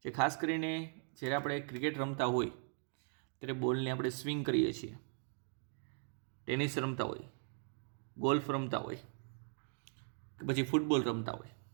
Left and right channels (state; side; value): silent; left; 52 dB below the other